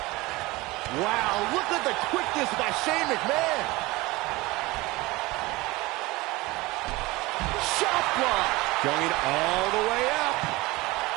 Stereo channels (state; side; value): quieter; left; 21.5 dB